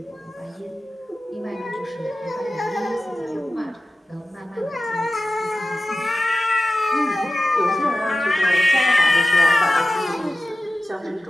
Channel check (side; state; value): both; normal; correlation 0.95